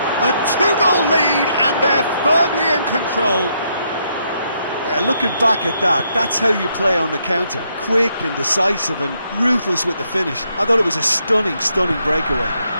A two-goal lead and they're firmly in control. Yeah, looking back at that, that's how you play on the counter. Quick and decisive and ruthless with the finish. I thought it was a stunning, stunning breakaway.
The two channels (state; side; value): inverted; both; correlation -0.76